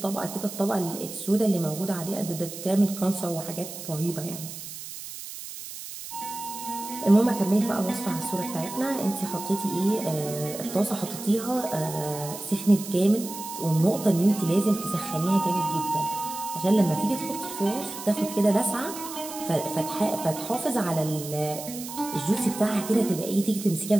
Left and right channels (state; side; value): noise; right; hiss, 11 dB below the sound